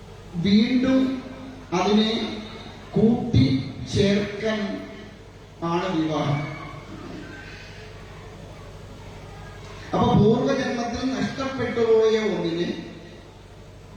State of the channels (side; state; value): both; identical; correlation 1.00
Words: വീണ്ടും അതിനെ കൂട്ടി ചേർക്കാൻ ആണ് വിവാഹം. അപ്പൊ പൂർവജന്മത്തിൽ നഷ്ടപ്പെട്ടുപോയ ഒന്നിനെ